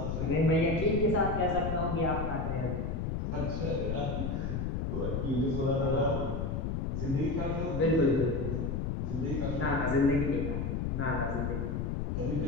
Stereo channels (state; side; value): noise; left; rumble, 1 dB below the sound